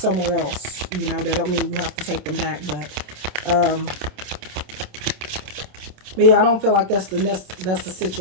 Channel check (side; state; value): left; late; 27 ms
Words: else. You know, that don't mean you have to take them back, but yeah, I don't feel like that's the